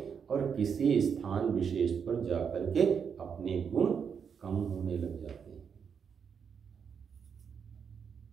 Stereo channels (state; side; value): quieter; left; 6.8 dB